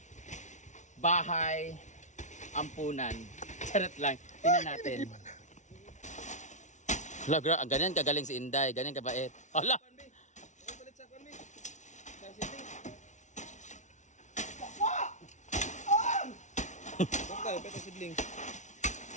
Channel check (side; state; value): right; late; 0.35 ms